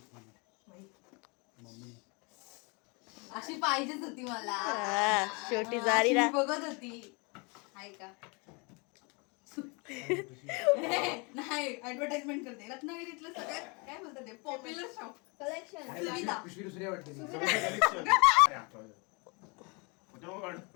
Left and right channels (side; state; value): right; quieter; 30.8 dB